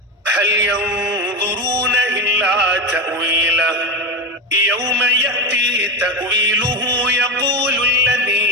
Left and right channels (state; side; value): normal; both; correlation 0.17